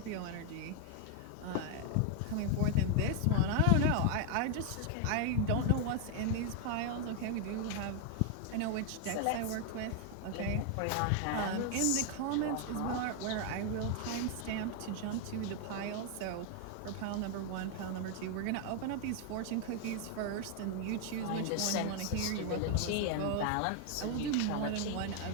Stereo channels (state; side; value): different; both; correlation 0.00